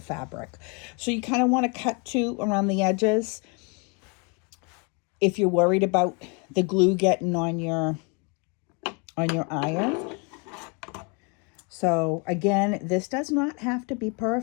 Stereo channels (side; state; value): right; quieter; 31.8 dB